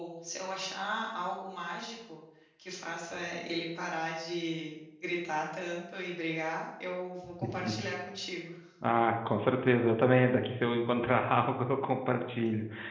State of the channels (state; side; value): identical; both; correlation 1.00